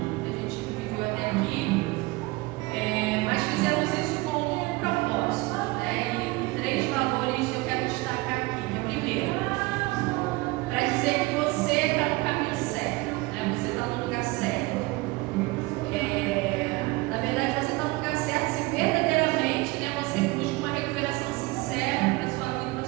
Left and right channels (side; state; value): left; quieter; 22.3 dB